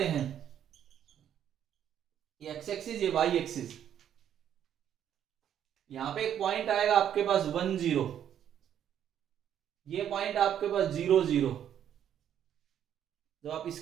हैं, ये एक्स एक्सिस ये वाई एक्सिस, यहां पे एक पॉइंट आएगा आपके पास 1 0, ये पॉइंट आपके पास 0 0। जब आप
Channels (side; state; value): left; quieter; 9.9 dB